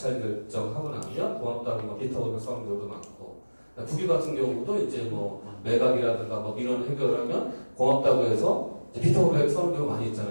결정하고 나면 고맙다고 뭐 비타오를 써는 경우도 많고, 국유 같은 경우도 이제 뭐 매각이라든가 뭐 민원 해결하면 고맙다고 해서 비타오를 써는 경우 많이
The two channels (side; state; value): both; inverted; correlation -1.00